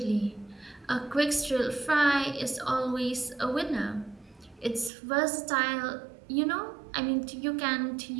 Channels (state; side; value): drops out; left; at 4.9 s